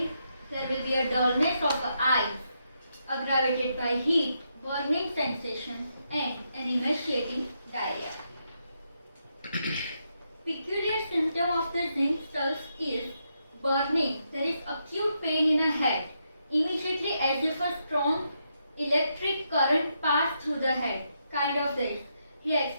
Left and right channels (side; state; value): both; inverted; correlation -0.81